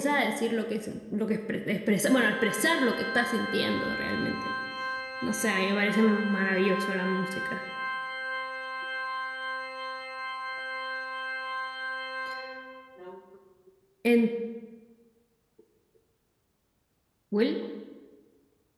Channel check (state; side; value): identical; both; correlation 1.00